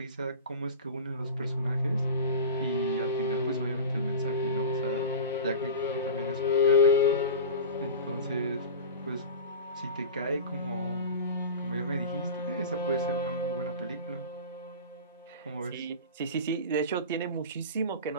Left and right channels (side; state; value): both; inverted; correlation -0.31